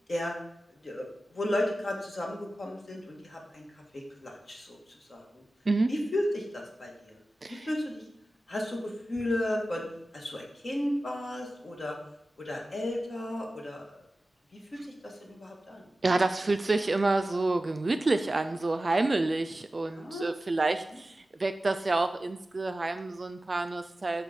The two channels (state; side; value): normal; both; correlation 0.95